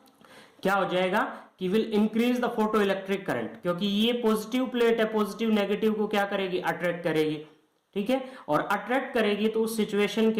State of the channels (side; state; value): both; identical; correlation 1.00